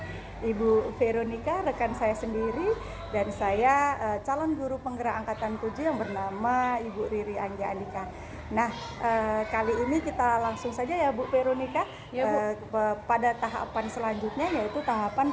Ibu Veronica, rekan saya sendiri, dan saya calon guru penggerak angkatan 7 yang bernama Ibu Riri Anggia Andika. Nah, kali ini kita langsung saja ya Bu Veronica, Ya, Bu. pada tahapan selanjutnya, yaitu tahapan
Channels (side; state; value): both; identical; correlation 1.00